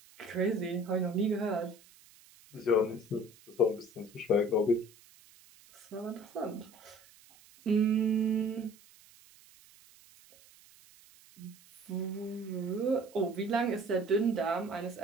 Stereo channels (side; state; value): right; noise; hiss, 25 dB below the sound